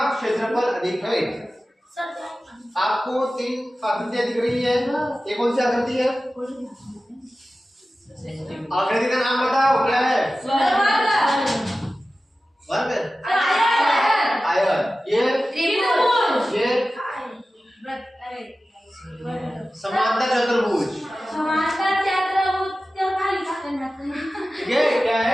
क्षेत्रफल अधिक है। आपको 3 आकृतियां दिख रही है, ये कौन सी आकृति है? आकृति का नाम बताओ, क्या है? वर्ग, आयत, ये समांतर चतुर्भुज, ये क्या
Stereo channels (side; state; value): both; normal; correlation 0.95